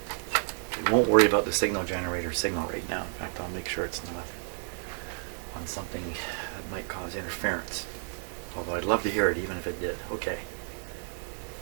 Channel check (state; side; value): silent; left; 57 dB below the other